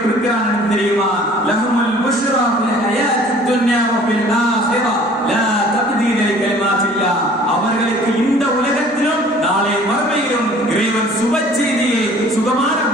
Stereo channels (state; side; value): normal; both; correlation 0.51